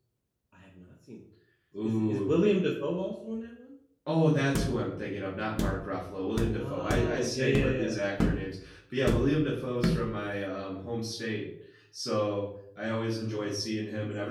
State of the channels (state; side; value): identical; both; correlation 1.00